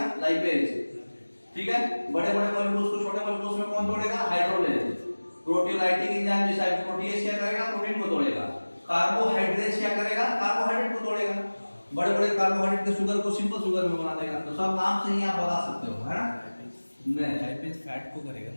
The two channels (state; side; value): inverted; both; correlation -1.00